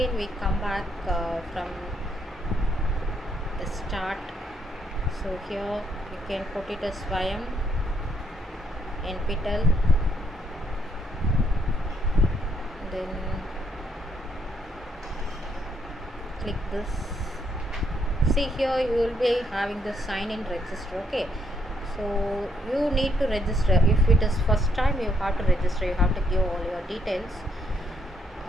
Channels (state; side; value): normal; both; correlation 0.72